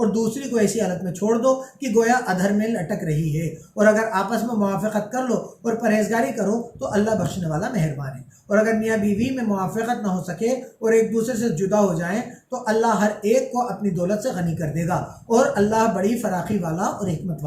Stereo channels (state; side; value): identical; both; correlation 1.00